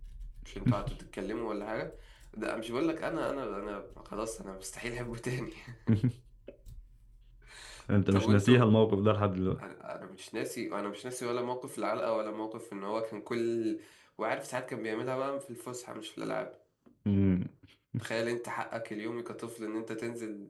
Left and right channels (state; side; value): identical; both; correlation 1.00